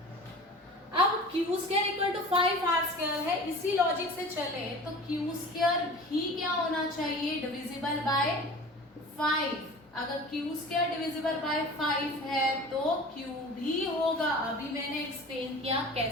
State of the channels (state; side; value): normal; both; correlation 0.40